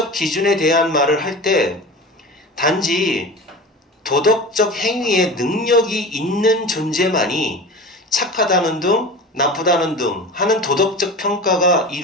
기준에 대한 말을 할 때 단지 도덕적 행위에 능력이 있는 존재만이 착하다는 등 나쁘다는 등 하는 도덕적 평가가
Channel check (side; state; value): both; normal; correlation 0.32